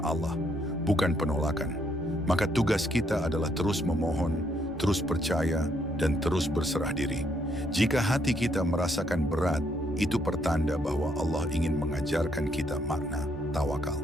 Allah, bukan penolakan. Maka tugas kita adalah terus memohon, terus percaya, dan terus berserah diri. Jika hati kita merasakan berat, itu pertanda bahwa Allah ingin mengajarkan kita makna tawakal.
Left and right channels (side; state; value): right; noise; hum, 28 dB below the sound